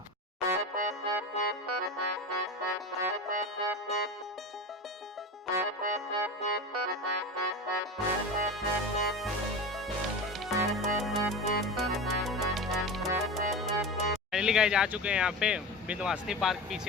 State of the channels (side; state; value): both; normal; correlation 0.27